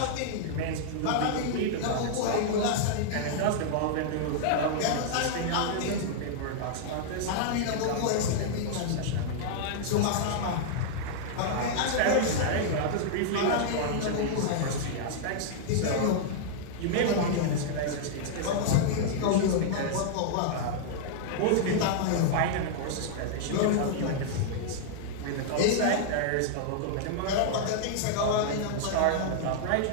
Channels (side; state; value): both; different; correlation -0.01